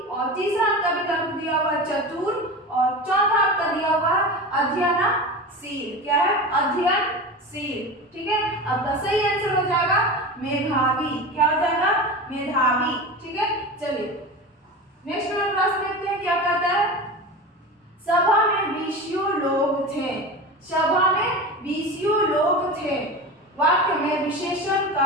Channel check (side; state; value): both; normal; correlation 0.28